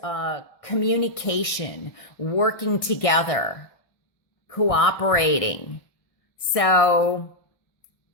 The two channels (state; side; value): late; right; 1.6 ms